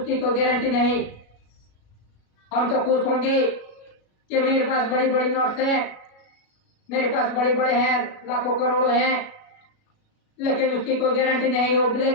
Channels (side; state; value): right; late; 37 ms